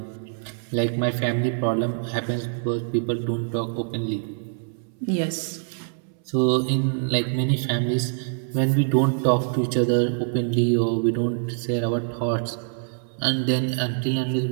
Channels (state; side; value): silent; left; 62 dB below the other